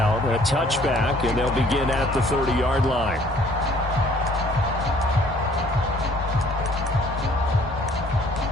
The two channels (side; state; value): both; normal; correlation 0.58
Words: A touchback, and they'll begin at the 30-yard line.